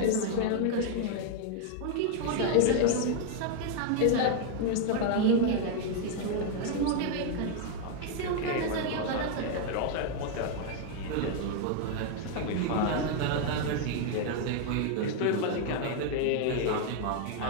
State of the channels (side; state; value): both; different; correlation 0.00